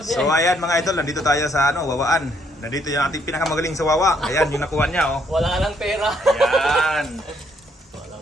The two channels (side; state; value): both; normal; correlation 0.70